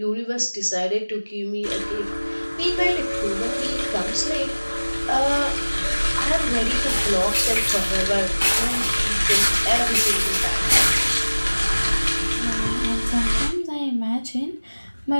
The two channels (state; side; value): inverted; both; correlation -1.00